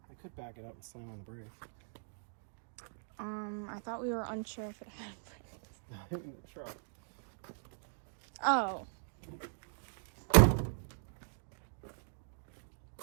I could back it up and slam on the brake. I thought we were unsure if it had brakes. In the truck. Oh. Only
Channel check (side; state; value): left; silent; digital silence